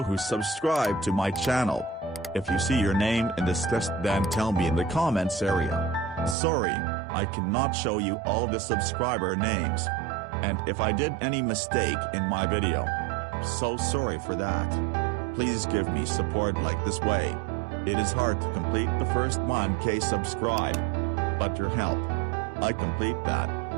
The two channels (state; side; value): drops out; left; at 6.4 s